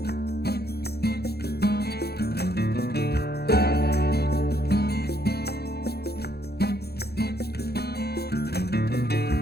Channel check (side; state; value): right; late; 0.46 ms